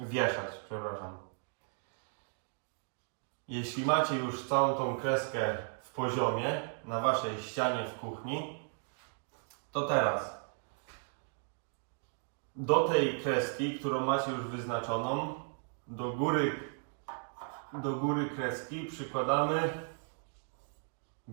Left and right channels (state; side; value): silent; left; 54 dB below the other